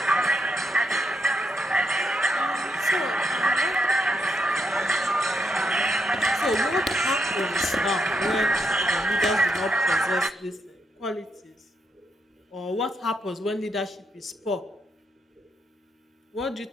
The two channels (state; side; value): normal; both; correlation 0.80